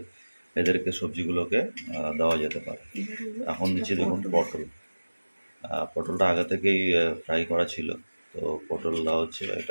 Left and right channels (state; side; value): inverted; both; correlation -1.00